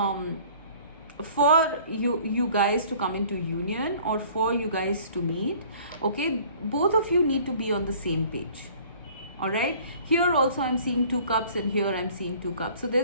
for you guys to come into union, or for you guys to meet, okay, both of you need to be on the same page, all right. Here also I'm seeing 2 cups, and here I'm seeing 2 cups, so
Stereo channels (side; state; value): both; inverted; correlation -0.52